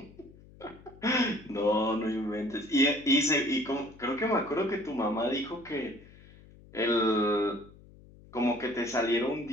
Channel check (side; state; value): left; noise; hum, 23 dB below the sound